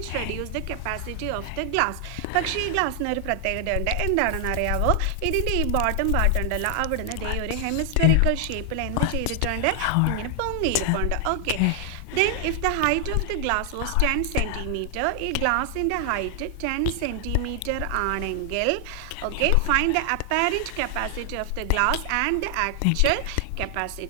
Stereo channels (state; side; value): different; both; correlation 0.00